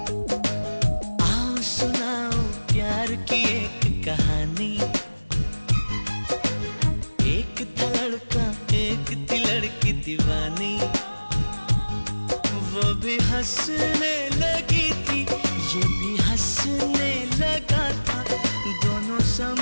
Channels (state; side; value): inverted; both; correlation -1.00